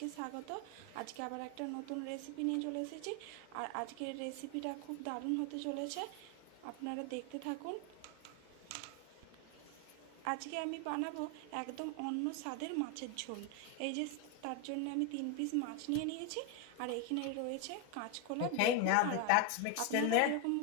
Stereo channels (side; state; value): both; different; correlation 0.01